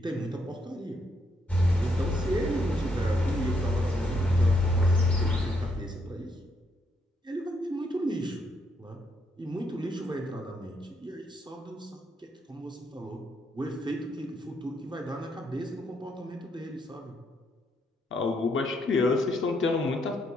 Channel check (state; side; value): normal; both; correlation 0.75